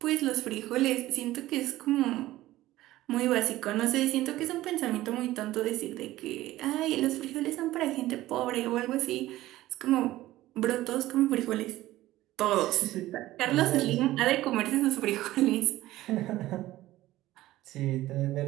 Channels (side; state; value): left; quieter; 16.0 dB